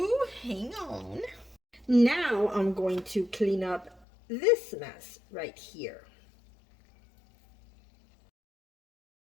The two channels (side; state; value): right; drops out; at 4.0 s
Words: hang on. Now I'm going to clean up this mess right here.